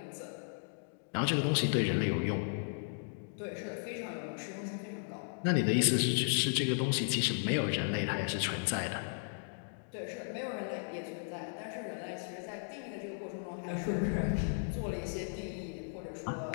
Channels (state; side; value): silent; right; digital silence